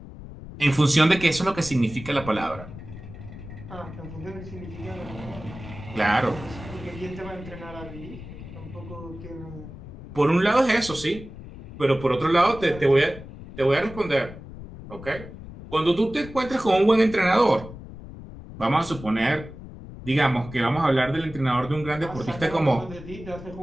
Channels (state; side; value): noise; left; rumble, 14 dB below the sound